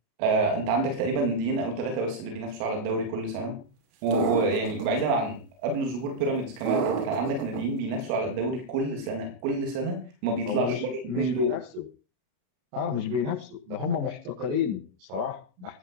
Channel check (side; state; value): left; late; 33 ms